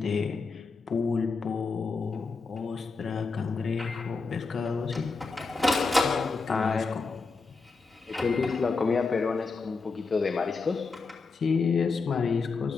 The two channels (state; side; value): quieter; right; 4.4 dB